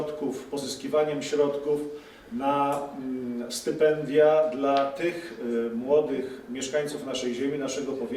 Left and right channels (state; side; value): identical; both; correlation 1.00